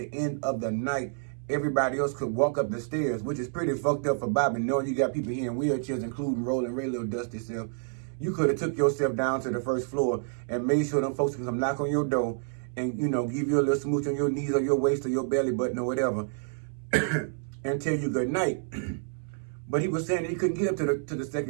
end of the night, everybody else could walk up the stairs, which is pretty fucked up for Bobby, knowing you got people here in wheelchairs, including Rolling Ray, little dusty self. You could have took yourself down to the first floor and made sure them folks can come knock on your door and, give you a little smooch on your knees or your waist or your belly button or whatever and tell you good night. But he was saying that he couldn't get up to the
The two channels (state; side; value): silent; left; 59 dB below the other